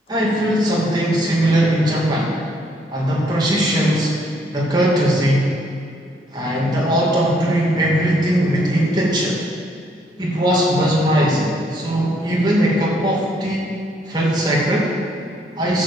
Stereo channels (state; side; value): normal; both; correlation 0.69